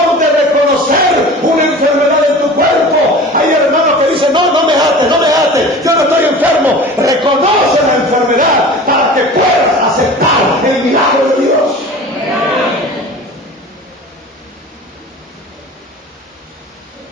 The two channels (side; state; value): both; normal; correlation 0.38